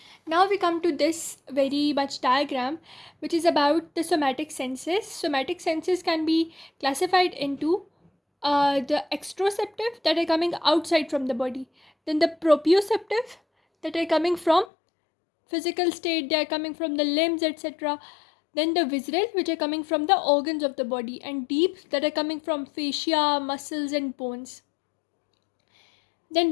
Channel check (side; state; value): right; drops out; at 14.7 s